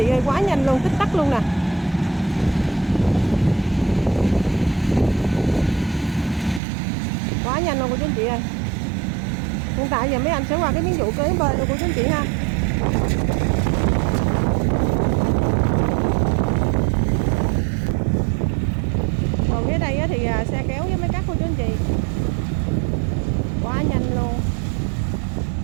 ơi, quá nhanh luôn, tích tắc luôn nè. Quá nhanh luôn của chú anh chị ơi. Hiện tại giờ mấy anh sẽ qua cái miếng vụ kế bên của chú anh chị ha. Còn phía đây thì xe kéo với mấy cắt của chú anh chị. Quá nhanh luôn.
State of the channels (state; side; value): drops out; left; at 6.6 s